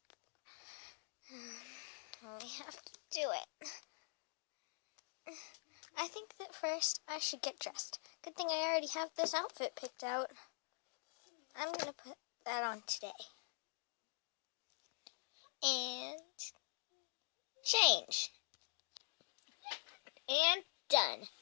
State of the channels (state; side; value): silent; right; digital silence